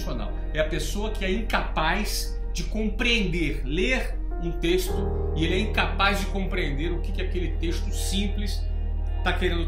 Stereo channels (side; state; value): both; identical; correlation 1.00